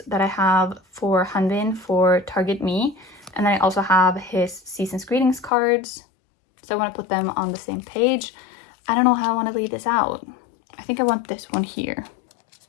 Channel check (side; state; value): right; drops out; at 5.5 s